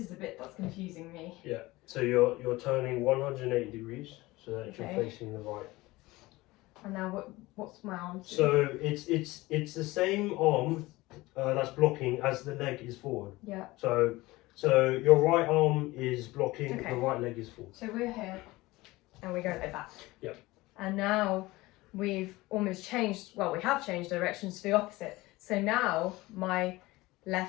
the bit that's confusing me. Yeah. So you're turning 180 degrees so that Okay. you're facing the right. And now what's my arm? So it's the same arm that's blocking as the leg is forward. Yeah. So your right arm is blocking, Okay. the right leg is forward. So we're here and we go like that. Yep. And now we've almost changed, well, we have changed directions to the opposite. So now my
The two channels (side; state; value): right; quieter; 20.1 dB